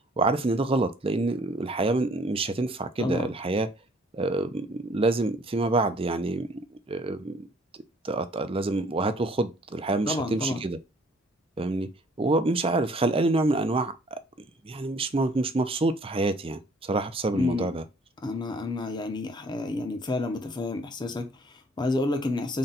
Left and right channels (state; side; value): normal; both; correlation 0.58